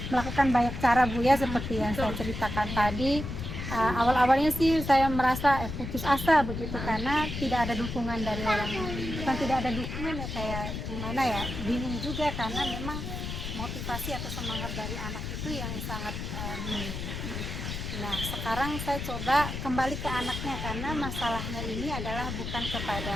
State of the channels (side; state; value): left; noise; rumble, 5 dB below the sound